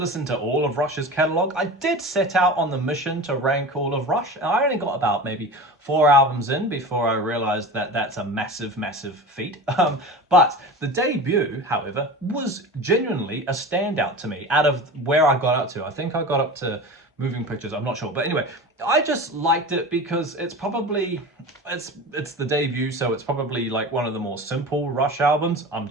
to all of Rush's catalogue. I did set out on the mission to rank all of Rush, and I only got about maybe 4 albums in before I realised that that's a massive, massive feat. But the debut, however, was genuinely a standout to me out of where I got up to. I think I got up to Moving Pictures, I'm not sure. But anyway, I just liked it because it's probably, it's the debut, so it's probably like one of the more simple Rush albums. I'm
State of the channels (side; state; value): both; normal; correlation 0.32